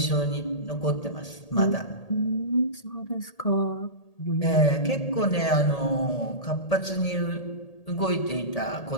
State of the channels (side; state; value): right; late; 1.8 ms